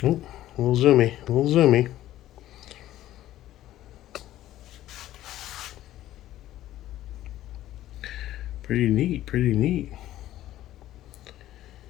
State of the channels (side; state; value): right; quieter; 13.9 dB